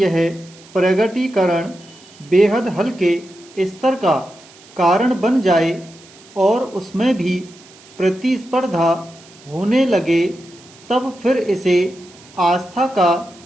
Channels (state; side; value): noise; right; hiss, 24 dB below the sound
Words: प्रगटीकरण बेहद हल्के स्तर का कारण बन जाए और उसमें भी प्रतिस्पर्धा होने लगे, तब फिर इसे आस्था का